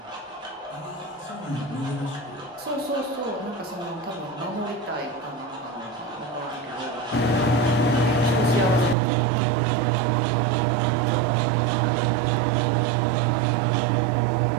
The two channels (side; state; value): left; drops out; at 9.0 s